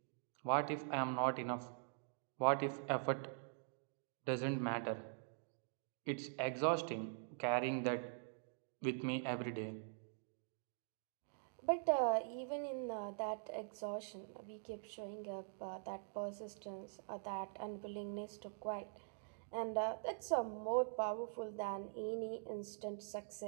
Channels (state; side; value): silent; left; digital silence